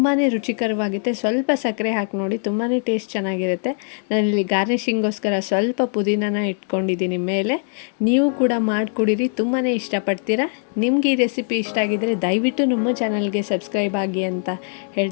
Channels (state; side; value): silent; right; 56 dB below the other